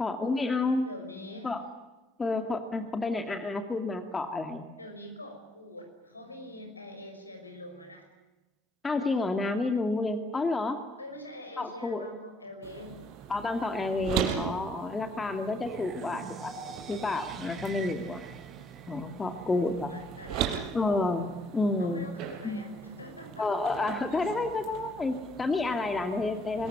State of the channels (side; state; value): both; normal; correlation 0.70